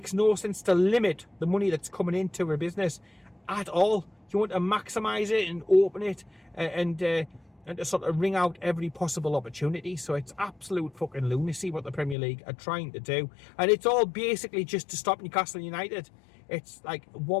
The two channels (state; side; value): drops out; right; at 12.2 s